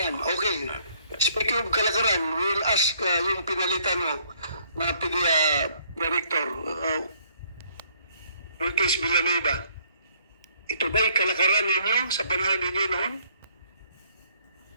okay. Speaking of kalakaran, we'll ask yung pinalitan mo na PDEA Director, Ortiz Villanueva. Ito ba'y kalakaran ninyo sa panahon ninyo noon?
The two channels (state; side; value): inverted; both; correlation -0.65